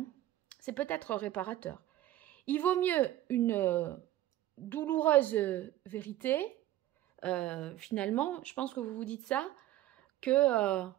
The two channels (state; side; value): quieter; left; 14.1 dB